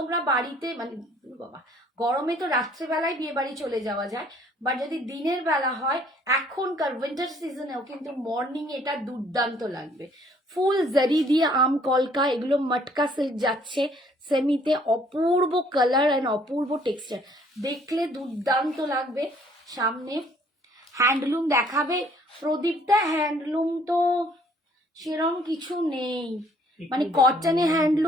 বাড়িতে মানে বাবা, গরমে তো রাত্রেবেলায় বিয়ে বাড়ি চলে যাওয়া যায়, বা যদি দিনের বেলা হয় এখনকার উইন্টার সিজনেও কিন্তু মর্নিং এটা দুর্দান্ত লাগবে। ফুল জারি দিয়ে আম কলকা, এগুলো মটকা সিল্ক যাচ্ছে সেমিতে, অপূর্ব কালার অ্যান্ড অপূর্ব টেক্সচার, দেখলে দুর্দান্ত লাগবে। সামনে হ্যান্ডলুম দেখাবে প্রদীপটা, হ্যান্ডলুম তো সেরকম কিছু নেই, মানে কটনে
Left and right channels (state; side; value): normal; both; correlation 0.60